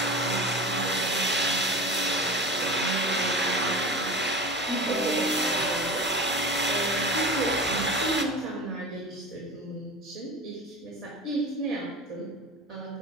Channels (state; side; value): normal; both; correlation 0.31